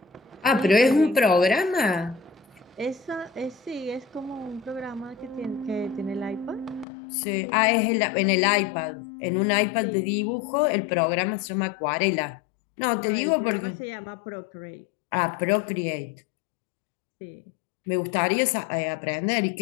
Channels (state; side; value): drops out; right; at 6.9 s